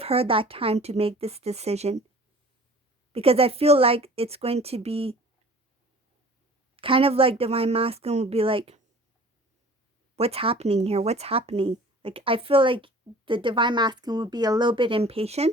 her that time to make this decision. Because I feel like it's going to be kind of like Divine Masculine will be like, what's happening here? What's happening? Like, I feel like the Divine Masculine will be a little bit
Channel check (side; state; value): both; normal; correlation 0.46